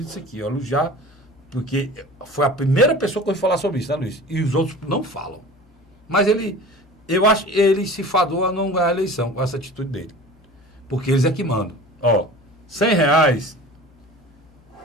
isso aqui, ó, já, porque foi a primeira pessoa que eu ouvi falar sobre isso, né, Luiz? E os outros não falam. Mas eu acho que ele se fadou a não ganhar a eleição com essa atitude dele. Porque eles é que mandam. Ó, R$100,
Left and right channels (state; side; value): normal; both; correlation 0.39